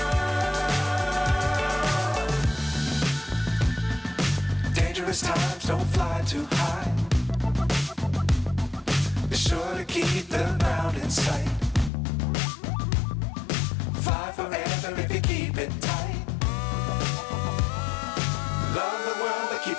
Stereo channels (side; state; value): right; drops out; at 11.9 s